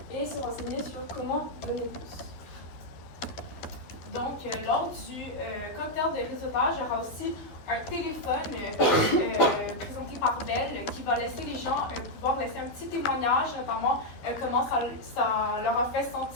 et se renseigner sur comment donner plus. Donc, lors du cocktail de réseautage, il y aura aussi un téléphone présenté par Bell qui va laisser les gens pouvoir laisser un petit témoignage, notamment comment ça leur a fait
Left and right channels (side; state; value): right; late; 12 ms